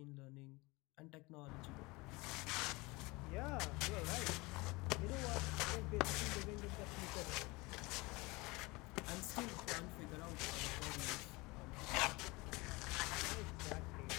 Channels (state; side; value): quieter; right; 24.1 dB